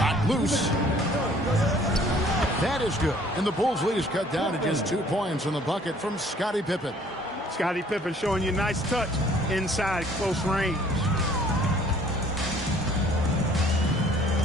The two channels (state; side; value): normal; both; correlation 0.57